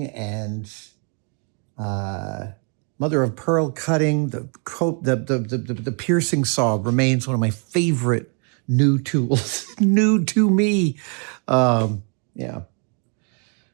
and mother of pearl cutting. The piercing saw remains one of my favorite new tools, new to me. Yeah. All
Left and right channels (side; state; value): left; quieter; 39.0 dB